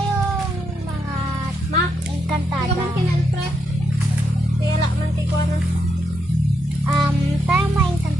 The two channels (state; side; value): normal; both; correlation 0.80